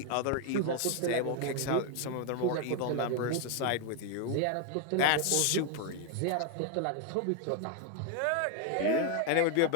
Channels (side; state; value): both; different; correlation 0.01